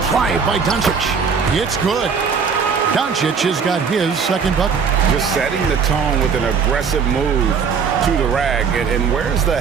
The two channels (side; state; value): left; quieter; 6.0 dB